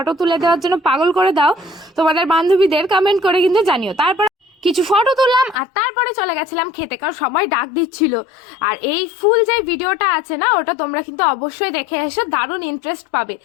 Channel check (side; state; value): right; drops out; at 5.6 s